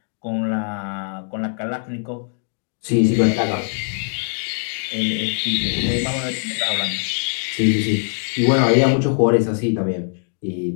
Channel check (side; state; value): right; silent; 62 dB below the other